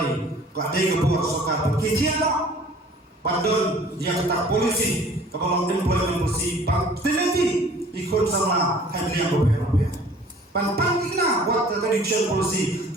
kadai ke buat soka kijian pandon dia kata polisi kalau employment polisi bang teliti ikut sama handling repair pantang kena buat tradition polisi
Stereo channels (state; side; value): normal; both; correlation 0.51